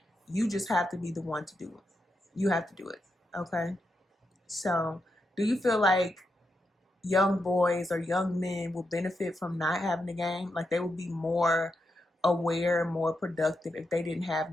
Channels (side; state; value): both; normal; correlation 0.85